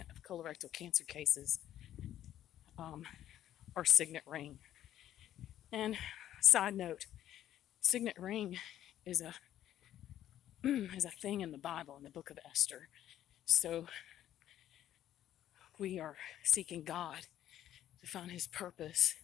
of colorectal cancer cases are signet ring. And side note, signet ring is a thing in the Bible, in the book of Esther. So we are seeking God to find his purpose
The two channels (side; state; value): right; quieter; 11.9 dB